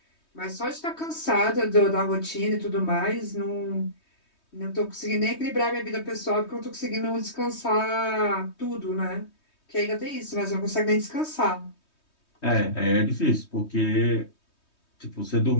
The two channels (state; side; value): late; right; 3.2 ms